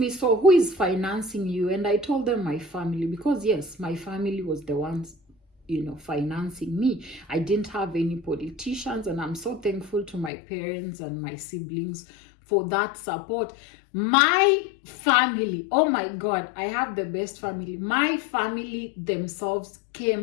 so who is financing you? And I told them my family, because yes, my family was the ones, you know, financing me. I didn't have any politicians, and I'm so thankful to my parents and my siblings for that support. My family, oh my God, I have the best family. My family themselves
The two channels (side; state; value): right; drops out; at 10.3 s